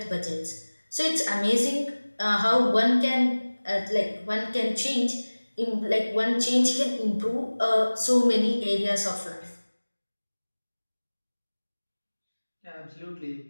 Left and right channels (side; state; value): both; inverted; correlation -1.00